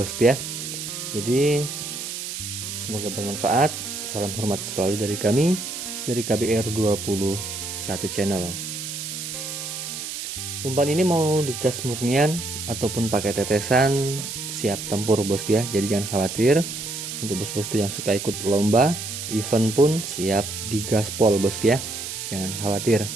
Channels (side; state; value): right; noise; hiss, 6 dB below the sound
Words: ya. Jadi semoga bermanfaat. Salam hormat selalu dari kami, dari KBR 21 channel. Umpan ini mau digas murnian ataupun pakai tetesan, siap tempur bosku ya. Jadi jangan khawatir. Untuk bos-bosku yang suka ikut lomba, event pun siap digaspol bosku ya. Jangan khawatir.